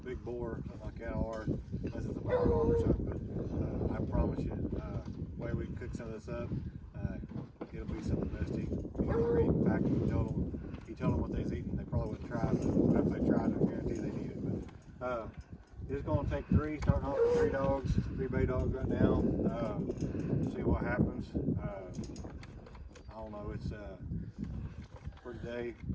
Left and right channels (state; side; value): identical; both; correlation 1.00